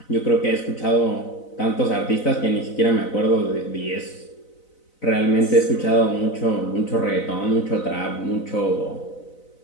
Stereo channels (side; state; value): right; late; 4.0 ms